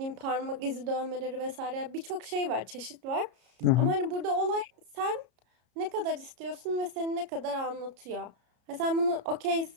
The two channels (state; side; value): late; left; 33 ms